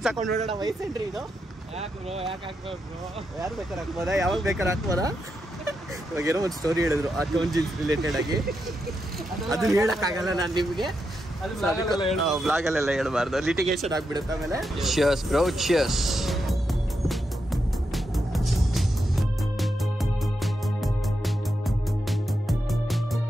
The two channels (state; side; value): normal; both; correlation 0.85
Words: ಹಾಕೊಂಡು ನೋಡೋಣ ವಯಸ್ಸೇನ್ರಿ ಇದು? ಯಾರು ಬೇಕಾದ್ರೆ ಹಾಕ್ಬೋದಾ, ಯಾವಾಗ ಬೇಕಾದ್ರೆ ಹಾಕ್ಬೋದಾ? ಇವಾಗ ಏನೋ ಒಂದು ಸ್ಟೋರಿ ಹೇಳಿದ್ರು ಆ ಟೋನ್ ಜೀನ್ಸ್ ರಿಲೇಟೆಡ್ ಆಗಿ, ಅದನ್ನ ಹೇಳಕ್ಕಾಗಲ್ಲ ನಾನು ನಿಮಗೆ, ಬ್ಲಾಗಲ್ಲೆಲ್ಲ ಹೇಳ್ಬಾರ್ದು, ಲಿಟಿಗೇಷನ್ ಆಗ್ಬಿಡುತ್ತೆ ಆಮೇಲೆ. Cheers bro, cheers.